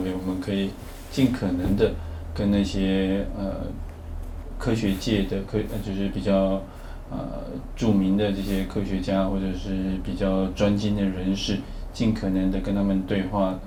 我们可以尽可能的跟那些科学界的就是比较著名的这些科学家或者是比较专精的人士，尽可能的跟他们对话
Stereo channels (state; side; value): identical; both; correlation 1.00